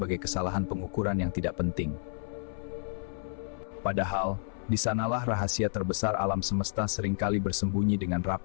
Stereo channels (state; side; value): silent; right; 57 dB below the other